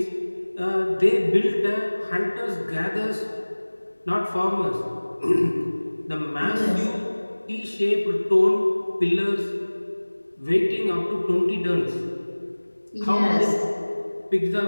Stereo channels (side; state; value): both; inverted; correlation -1.00